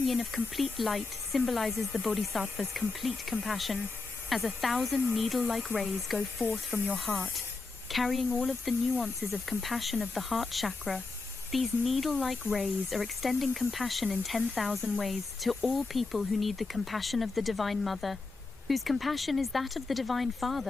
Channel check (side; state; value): right; quieter; 3.8 dB